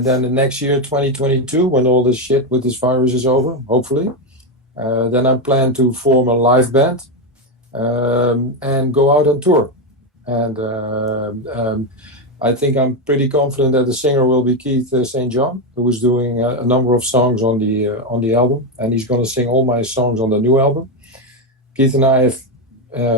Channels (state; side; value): normal; both; correlation 0.09